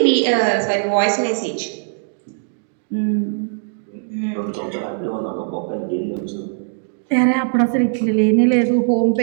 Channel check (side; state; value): left; silent; digital silence